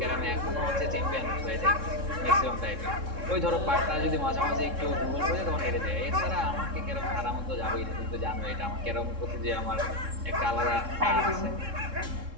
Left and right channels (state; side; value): late; left; 3.7 ms